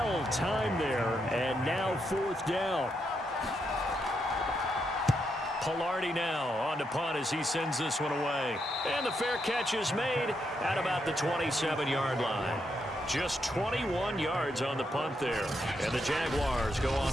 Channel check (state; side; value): normal; both; correlation 0.81